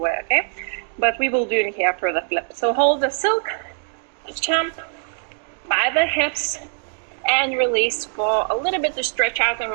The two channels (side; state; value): left; silent; digital silence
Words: okay? But we will do it here for the flip. So hold the silk, jump by the hips, and release for a little bit to stretch out and